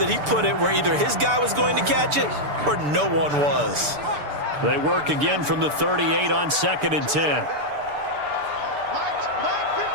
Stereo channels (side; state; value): left; late; 6.8 ms